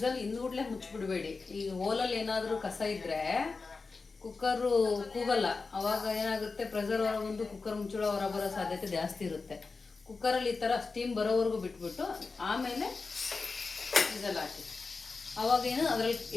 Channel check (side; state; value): right; quieter; 4.2 dB